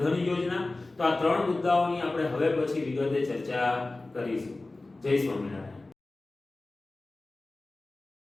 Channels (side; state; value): right; quieter; 3.1 dB